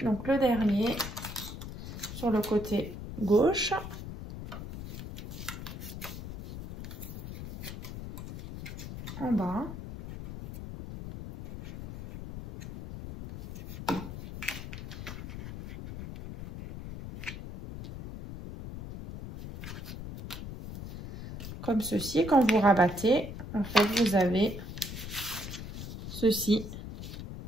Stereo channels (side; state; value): left; noise; rumble, 9 dB below the sound